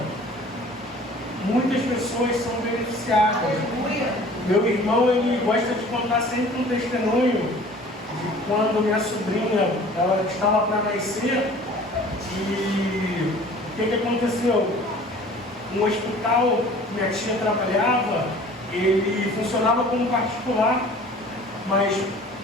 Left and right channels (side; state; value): both; normal; correlation 0.47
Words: muitas pessoas são beneficiadas. Meu irmão, ele gosta de contar sempre um testemunho de quando minha sobrinha, ela estava para nascer, e o que aconteceu? Um hospital que minha tia trabalhava, ele funcionava como particular, mas